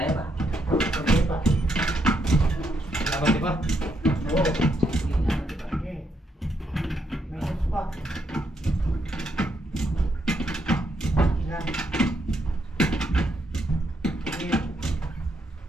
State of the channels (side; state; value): both; normal; correlation 0.77